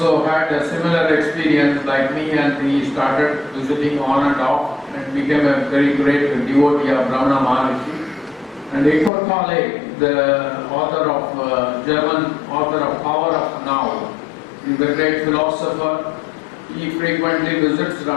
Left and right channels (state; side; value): drops out; right; at 9.1 s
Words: had a similar experience like me, and he started visiting on and off and became a very great devotee of Ramana Maharshi. And Eckhart Tolle, the author of German author of Power of Now, is a great philosopher. He frequently visits